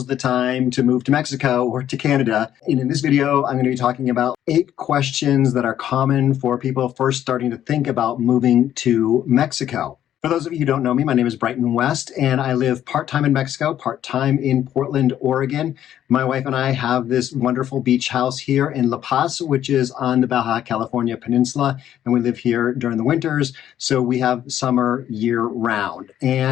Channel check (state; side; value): quieter; right; 11.1 dB